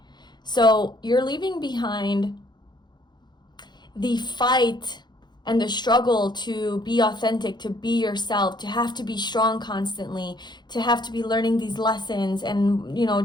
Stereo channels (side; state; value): right; late; 0.21 ms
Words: So you're leaving behind the fight and the struggle to be authentic, to be yourself, to have to be strong constantly, to have to be learning these lessons and,